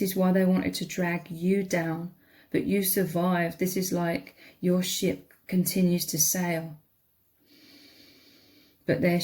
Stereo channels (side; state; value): both; identical; correlation 1.00